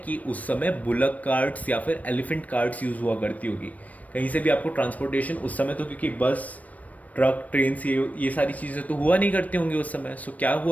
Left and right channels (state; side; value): late; right; 0.071 ms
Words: उस समय बुलक कार्ट्स या फिर एलिफेंट कार्ट्स यूज़ हुआ करती होगी। कहीं से भी आपको ट्रांसपोर्टेशन उस समय, तो क्योंकि बस, ट्रक, ट्रेन, ये सारी चीज़ें तो हुआ नहीं करती होंगी उस समय। सो क्या